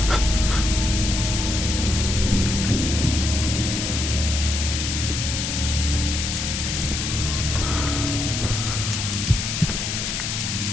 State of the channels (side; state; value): left; noise; hiss, 2 dB below the sound